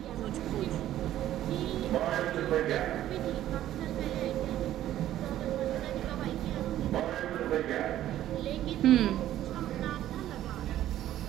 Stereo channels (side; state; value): left; quieter; 12.8 dB